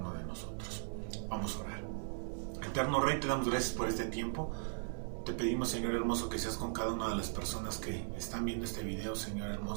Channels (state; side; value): silent; left; digital silence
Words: de nosotros. Vamos a orar. Eterno Rey, te damos gracias por este tiempo. Te pedimos, Señor hermoso, que seas con cada una de las personas que están viendo este video, Señor